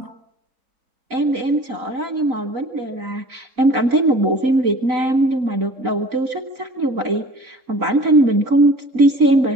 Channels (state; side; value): late; left; 3.9 ms